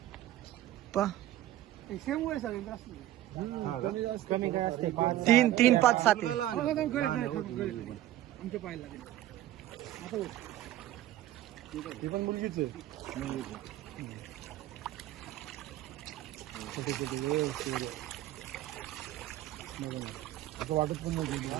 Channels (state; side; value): quieter; left; 13.9 dB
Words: सेम वय सगळे हा का? कमी काय असते. 3 3 5 7 मुलगाला आणा. लहान आहे, हो, मुलगी पण. आमच्या पाहायला लागेल. ती पण मुलगीच आहे. छोटे छोटे असं वाटत पण नाही.